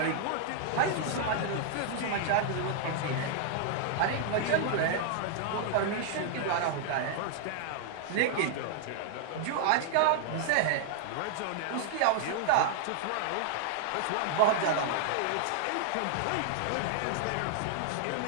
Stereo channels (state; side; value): different; both; correlation 0.00